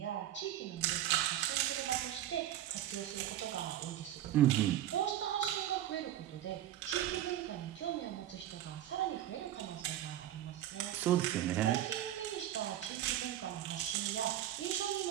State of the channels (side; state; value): left; quieter; 12.3 dB